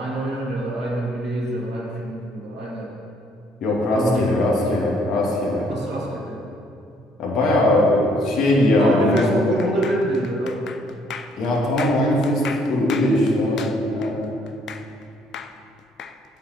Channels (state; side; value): normal; both; correlation 0.65